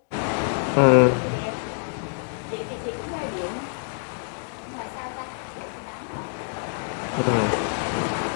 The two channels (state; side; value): silent; right; 60 dB below the other